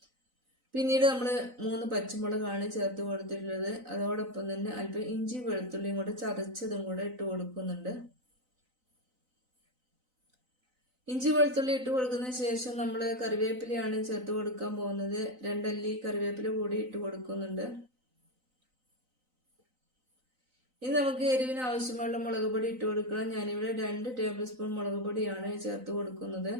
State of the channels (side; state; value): left; late; 3.9 ms